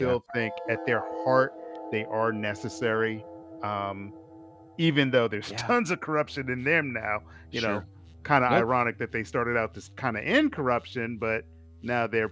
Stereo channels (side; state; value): both; identical; correlation 1.00